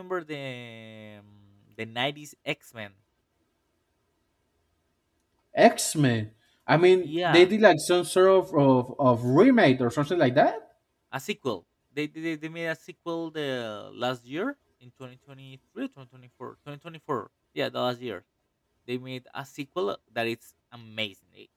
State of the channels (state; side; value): identical; both; correlation 1.00